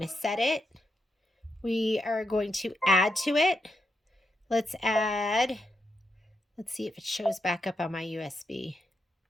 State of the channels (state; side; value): normal; both; correlation 0.84